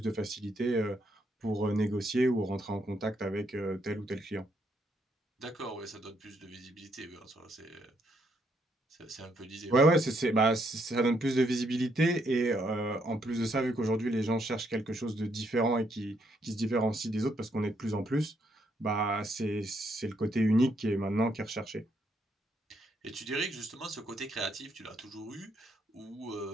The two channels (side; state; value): both; normal; correlation 0.74